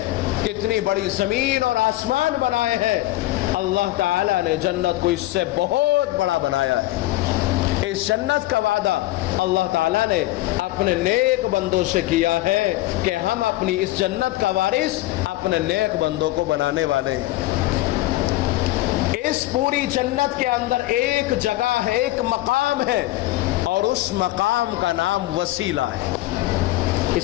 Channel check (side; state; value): right; quieter; 17.1 dB